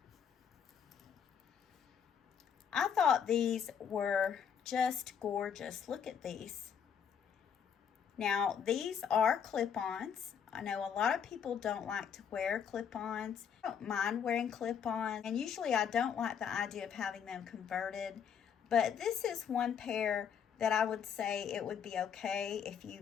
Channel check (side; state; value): right; quieter; 7.7 dB